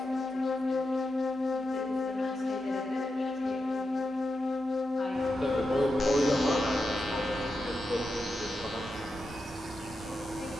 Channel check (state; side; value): normal; both; correlation 0.88